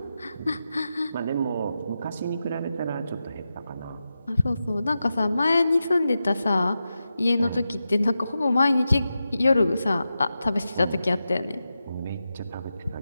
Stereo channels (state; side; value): inverted; both; correlation -0.90